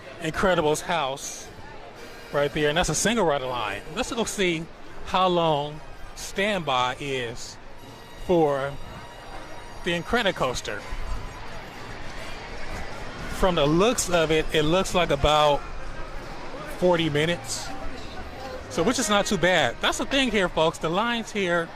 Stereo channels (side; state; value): both; identical; correlation 1.00